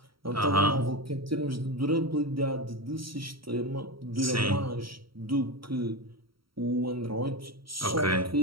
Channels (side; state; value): left; late; 0.74 ms